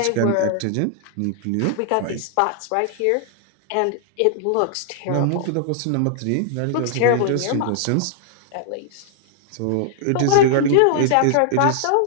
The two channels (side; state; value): both; different; correlation -0.01